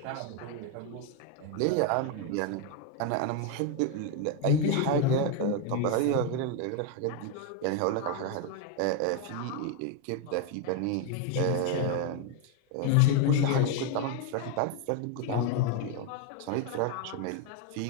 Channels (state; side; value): different; both; correlation 0.01